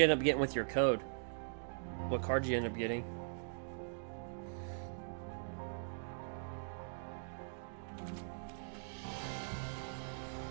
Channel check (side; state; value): left; silent; digital silence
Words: end up getting with your code? What card did you end up getting?